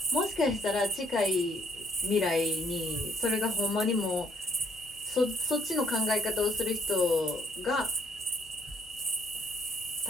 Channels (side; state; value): both; normal; correlation 0.66